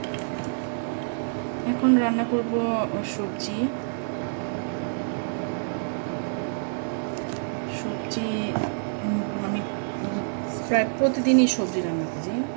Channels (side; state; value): left; silent; digital silence